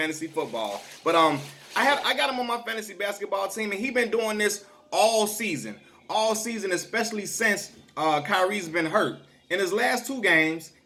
football. But I got him on my fantasy basketball team, and he been doing this all season, especially since Kyrie's been hurt. In his last 2 games,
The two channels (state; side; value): identical; both; correlation 1.00